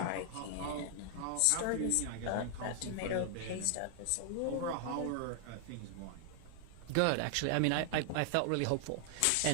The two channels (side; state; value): both; different; correlation 0.00